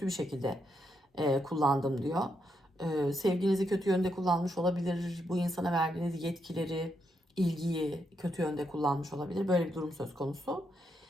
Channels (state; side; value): normal; both; correlation 0.80